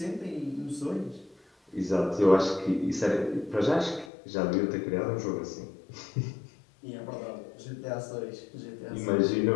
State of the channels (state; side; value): drops out; right; at 4.1 s